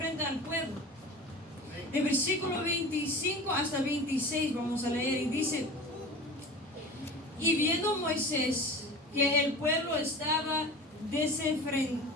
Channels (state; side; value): normal; both; correlation 0.35